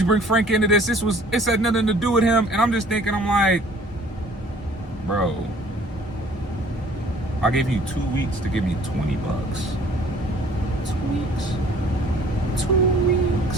Frank into this? It had nothing to do with him. And I'm just thinking, I'm like, bro, I gave you 2 weeks to give me $20. 2 weeks. $20.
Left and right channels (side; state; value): both; normal; correlation 0.54